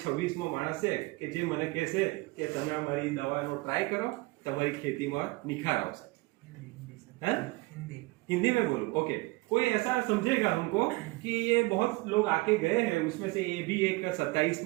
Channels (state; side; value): quieter; left; 23.2 dB